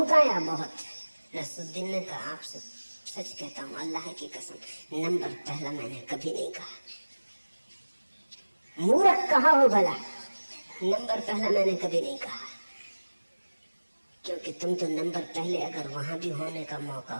बहुत। नसरुद्दीन ने कहा आपसे सच कहता हूं, अल्लाह की कसम, नंबर पहला मैंने कभी नहीं कहा। मूर्ख कहा हो भला, नंबर पहला मैंने कभी नहीं कहा। क्योंकि तुम तो नंबर पहले अगर वहां भी होने का मौका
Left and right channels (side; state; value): both; inverted; correlation -1.00